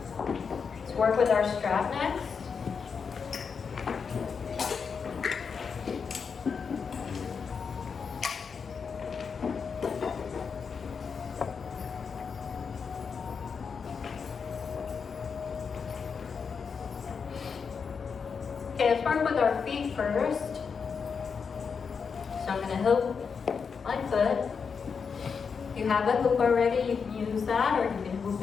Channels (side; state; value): right; quieter; 5.9 dB